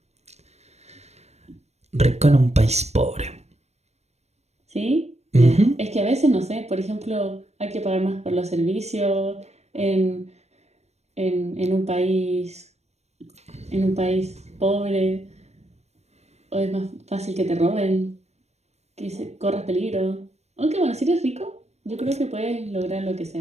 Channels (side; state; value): left; late; 0.31 ms